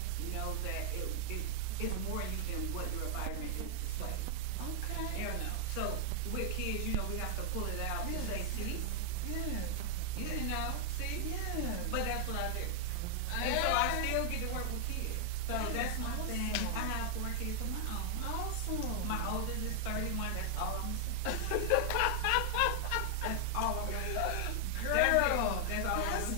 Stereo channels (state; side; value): different; both; correlation 0.00